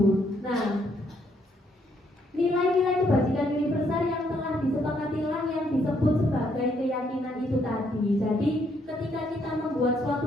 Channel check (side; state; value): both; normal; correlation 0.71